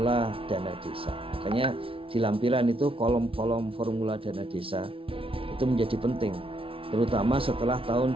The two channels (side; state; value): left; late; 0.26 ms